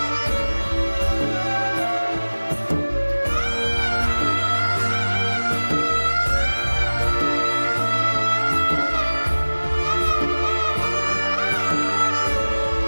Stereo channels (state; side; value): inverted; both; correlation -1.00